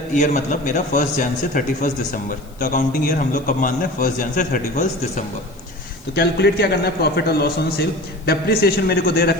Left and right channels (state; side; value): noise; left; hiss, 27 dB below the sound